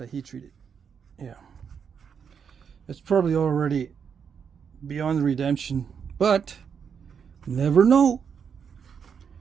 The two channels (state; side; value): quieter; left; 6.9 dB